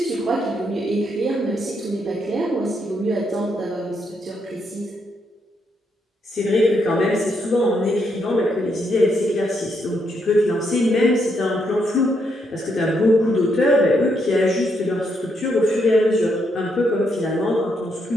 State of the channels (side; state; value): both; normal; correlation 0.77